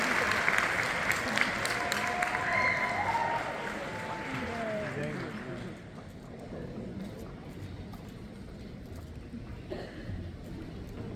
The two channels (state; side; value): identical; both; correlation 1.00